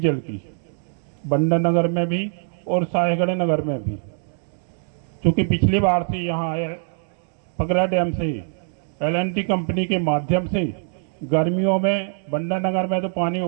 की, बंडा नगर में भी और साहेगढ़ नगर में भी। क्योंकि पिछली बार से यहाँ पगरा डैम से LNT कंपनी के माध्यम से गर्मियों में बंडा नगर में तो पानी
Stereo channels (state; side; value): silent; left; 63 dB below the other